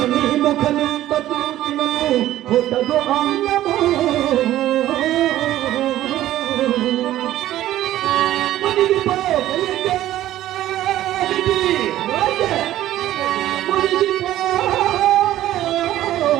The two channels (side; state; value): left; quieter; 13.8 dB